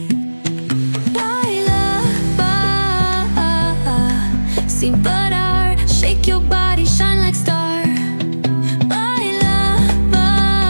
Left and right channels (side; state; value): both; inverted; correlation -1.00